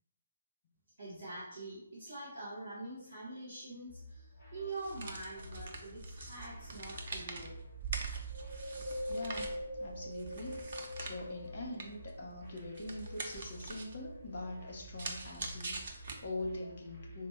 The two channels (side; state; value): both; inverted; correlation -0.75